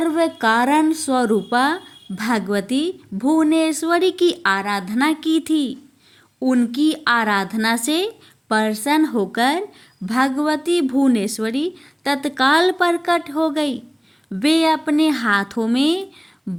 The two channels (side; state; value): both; identical; correlation 1.00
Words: कारण स्वरूपा भगवती भुवनेश्वरी की आराधना की थी। उनकी आराधना से प्रसन्न होकर भगवती भुवनेश्वरी तत्काल प्रकट हो गई। वे अपने हाथों में